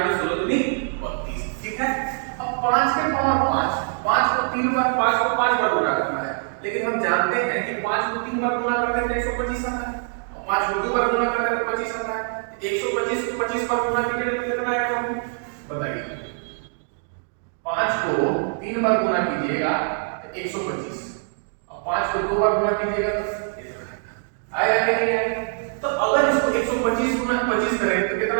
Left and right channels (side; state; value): left; silent; digital silence